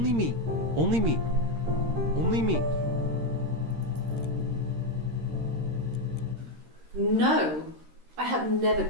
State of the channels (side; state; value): left; late; 13 ms